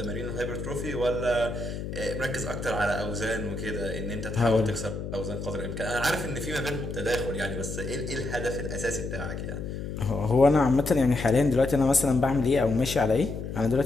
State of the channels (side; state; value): left; noise; hum, 6 dB below the sound